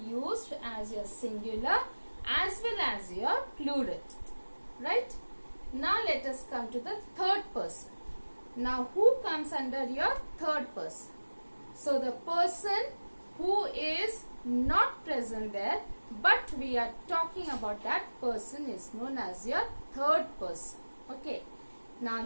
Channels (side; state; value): both; inverted; correlation -1.00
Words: as your singular as well as your plural. Right? Now let us come to the third person. Now who comes under your third person? So the person who is not present there, but we are talking about that person is known as your third person. Okay. Now